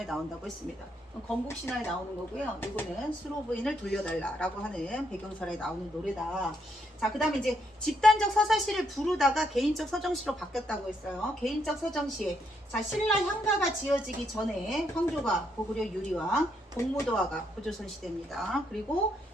나온다고 했습니다. 건국신화에 나오는 거고요. 이거는 수로부인을 돌려달라라고 하는 배경설에 나오는 노래다. 자, 그 다음에 이제 집단적 서사시를 부르다가 개인적 서정시로 바뀌었다고 했어요. 개인적 서정시. 자, 신라 향가가 지어지기 전에 황조가 고구려 유리왕, 공무도화가 고조선 시대입니다. 그리고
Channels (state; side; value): normal; both; correlation 0.75